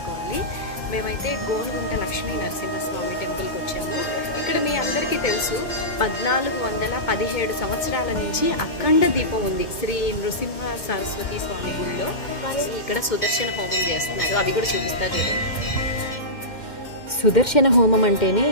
మేమైతే గోనుగుంట లక్ష్మీ నరసింహస్వామి టెంపుల్కి వచ్చాము. ఇక్కడ మీ అందరికీ తెలుసు, 1417 సంవత్సరాల నుంచి అఖండ దీపం ఉంది శ్రీ నృసింహ సరస్వతి స్వామి గుడిలో. ఇక్కడ సుదర్శన హోమం చేస్తున్నారు, అది కూడా చూపిస్తారు చూడండి. సుదర్శన హోమం అంటేనే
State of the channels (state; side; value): late; right; 2.1 ms